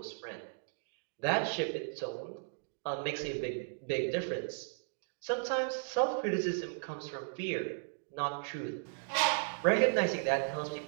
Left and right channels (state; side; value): silent; left; digital silence